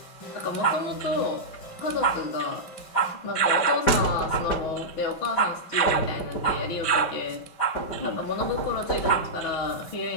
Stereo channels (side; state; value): right; late; 5.1 ms